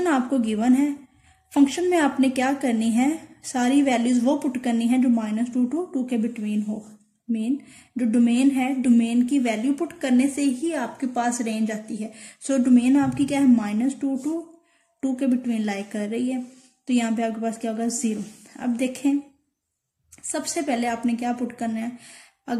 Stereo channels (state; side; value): identical; both; correlation 1.00